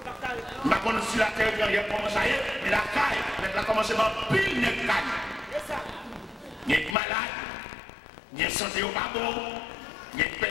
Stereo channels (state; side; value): drops out; right; at 7.0 s